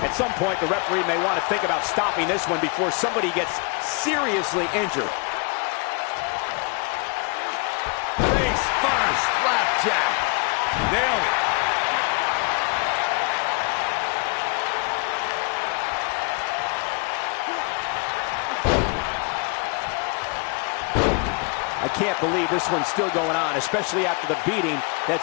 At some point, the referee may want to think about stopping this one before somebody gets seriously injured. face first. Flapjack. Nailed it. I can't believe this one's still going on, especially after the beating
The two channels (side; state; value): right; quieter; 32.0 dB